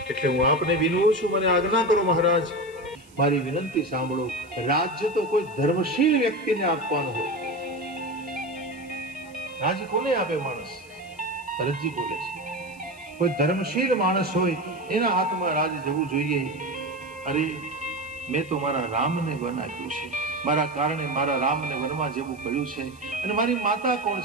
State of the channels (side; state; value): right; noise; hiss, 27 dB below the sound